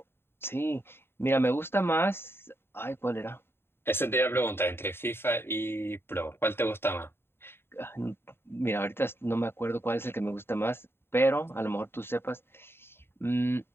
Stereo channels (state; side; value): late; right; 0.11 ms